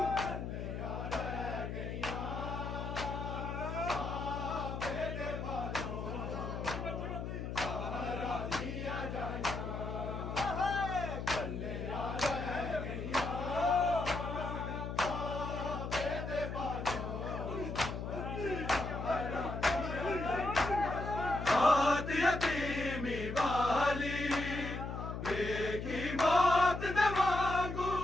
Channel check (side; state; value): left; noise; hum, 5 dB below the sound